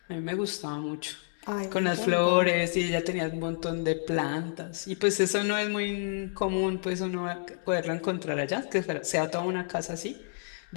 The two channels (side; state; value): right; silent; digital silence